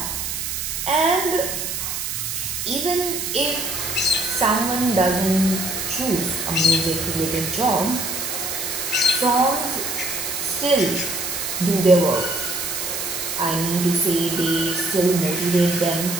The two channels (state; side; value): noise; right; hiss, 3 dB below the sound